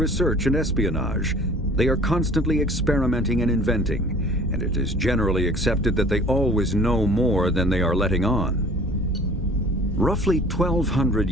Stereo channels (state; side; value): normal; both; correlation 0.49